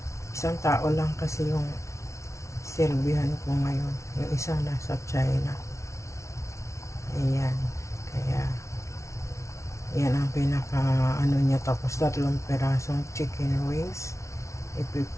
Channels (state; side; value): late; right; 0.14 ms